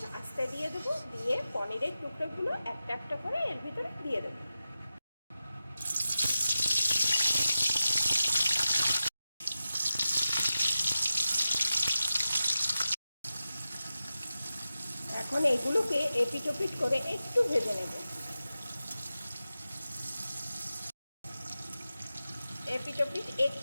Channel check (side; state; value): both; inverted; correlation -0.93